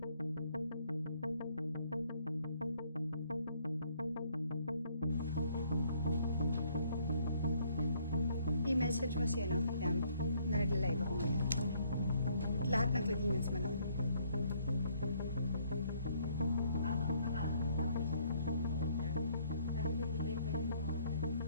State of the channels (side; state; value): both; inverted; correlation -0.65